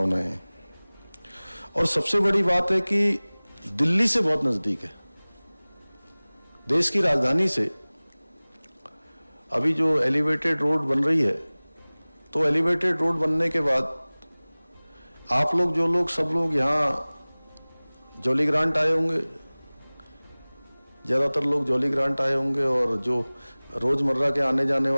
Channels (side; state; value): both; inverted; correlation -1.00